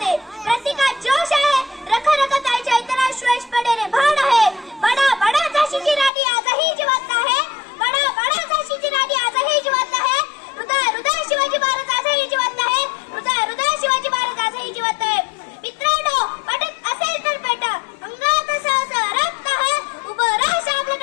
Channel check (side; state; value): right; drops out; at 6.1 s